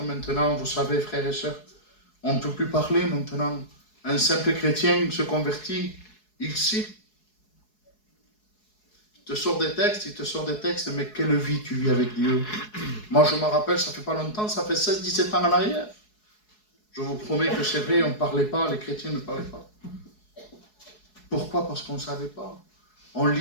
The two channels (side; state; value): right; late; 4.7 ms